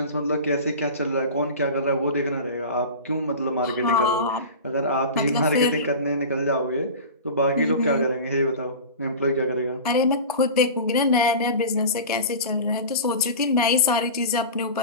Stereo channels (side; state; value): both; inverted; correlation -0.32